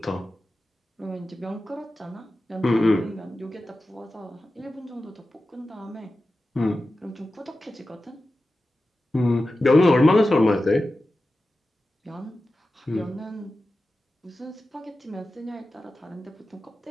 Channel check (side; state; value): both; normal; correlation 0.93